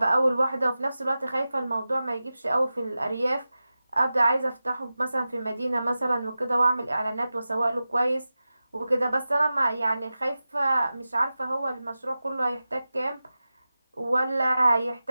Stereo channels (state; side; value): inverted; both; correlation -0.94